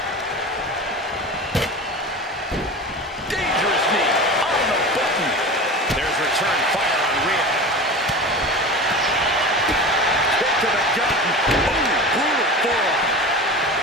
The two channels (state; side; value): normal; both; correlation 0.31